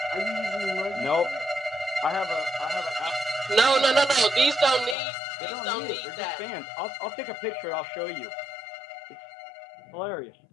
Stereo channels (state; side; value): drops out; right; at 5.0 s